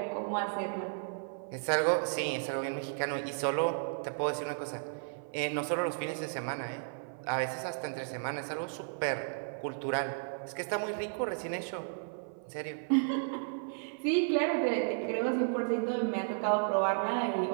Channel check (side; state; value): left; silent; 55 dB below the other